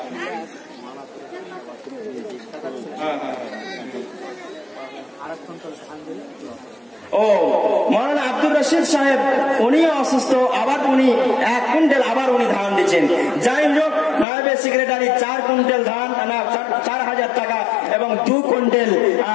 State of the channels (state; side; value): drops out; right; at 14.2 s